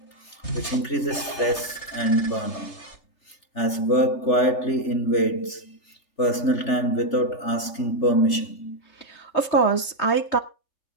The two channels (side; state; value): right; late; 3.4 ms